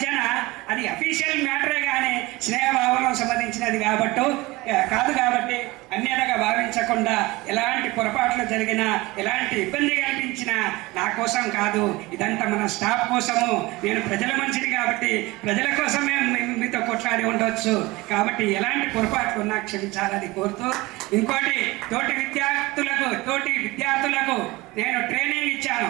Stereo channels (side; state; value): left; quieter; 21.5 dB